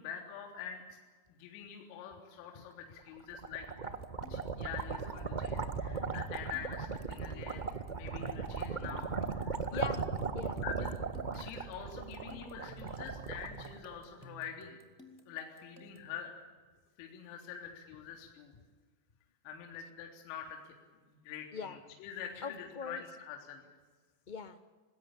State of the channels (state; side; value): late; right; 2.2 ms